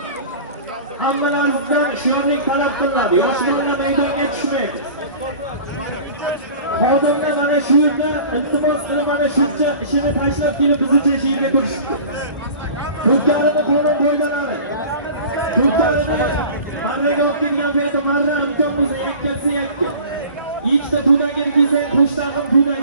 Hammalaringizdan shirinlik talab qilinadi. Yosh bolalar maydonga tushmaydi. Xodimlar mana shu yerda iltimos qilib mana shuncha ishini tashlab kelib biz uchun shu yerga turishibdi. Turkiyalarning qonun qoidalari. Turkiyalarning marraga o'tgan paytda marra imkon bo'lsa yakkasi yakka. Ikkita tudaga kelsa qo'shtag'im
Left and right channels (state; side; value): inverted; both; correlation -0.41